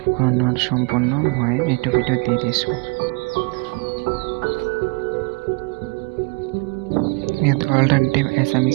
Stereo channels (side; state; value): left; quieter; 31.0 dB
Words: সম্পূৰ্ণ মই এইটো ভিডিঅ'ত দি দিছোঁ। ইয়াত অল্টাৰনেটিভ